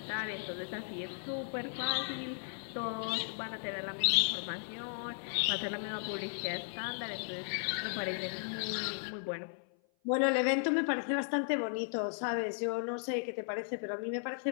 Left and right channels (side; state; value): right; silent; 54 dB below the other